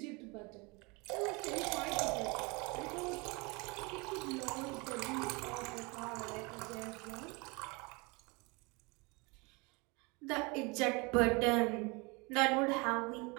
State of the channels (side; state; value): left; quieter; 27.9 dB